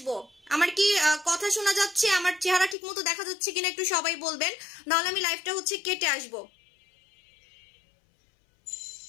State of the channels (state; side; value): drops out; right; at 2.8 s